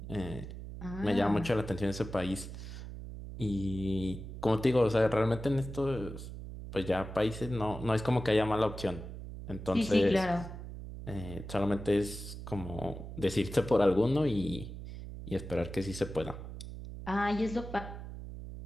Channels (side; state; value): right; noise; hum, 10 dB below the sound